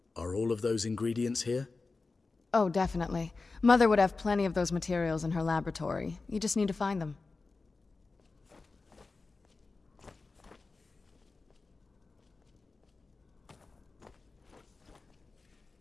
Are all of those ingredients here? Oh, definitely. Mother would have plenty of those materials in her laboratory. You just need to find them.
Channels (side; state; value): right; quieter; 3.8 dB